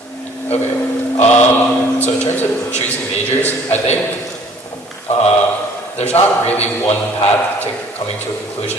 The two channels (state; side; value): normal; both; correlation 0.55